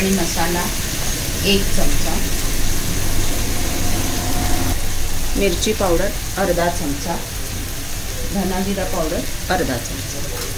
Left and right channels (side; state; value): both; identical; correlation 1.00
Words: मसाला 1 चमचा, मिरची पावडर अर्धा चमचा, धना जिरा पावडर अर्धा चमचा।